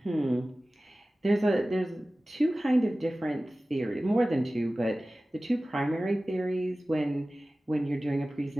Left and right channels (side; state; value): both; normal; correlation 0.97